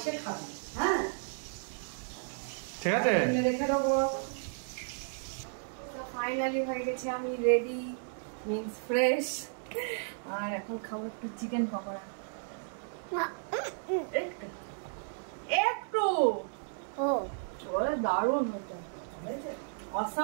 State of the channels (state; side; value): silent; left; digital silence